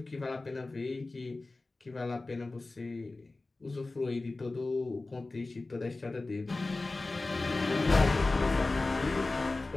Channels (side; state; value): right; quieter; 3.2 dB